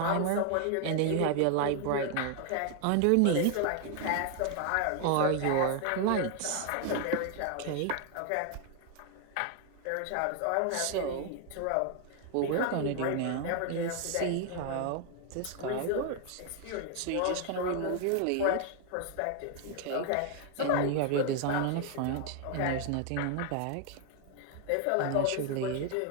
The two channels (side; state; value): both; different; correlation 0.00